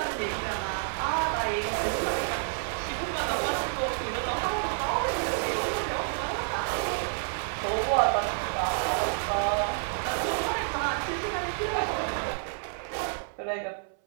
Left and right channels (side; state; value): left; silent; 58 dB below the other